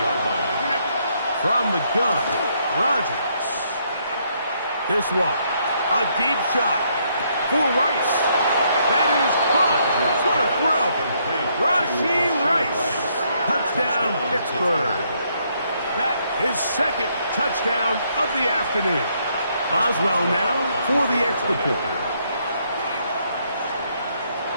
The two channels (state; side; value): inverted; both; correlation -0.72